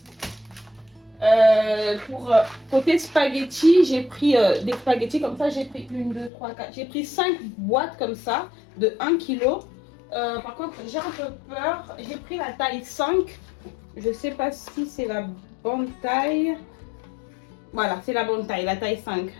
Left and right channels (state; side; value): drops out; right; at 6.3 s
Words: Pour côté spaghetti, j'ai pris des spaghettis comme ça. J'ai pris 1, 2, 3, 4. J'ai pris 5 boîtes comme ça de 1 kg. Par contre, j'ai un peu peur. J'ai pris la taille 5. Je sais pas si c'est la bonne taille. Voilà, c'est la bonne taille, la taille 5.